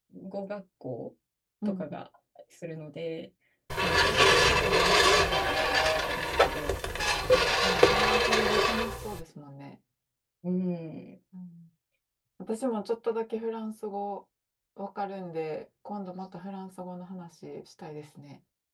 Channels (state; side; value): identical; both; correlation 1.00